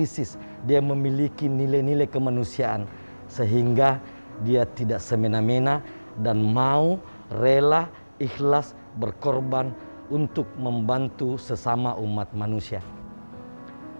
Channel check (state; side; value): inverted; both; correlation -1.00